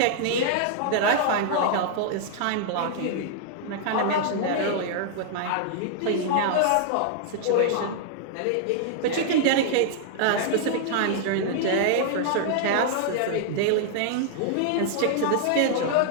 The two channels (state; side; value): different; both; correlation -0.01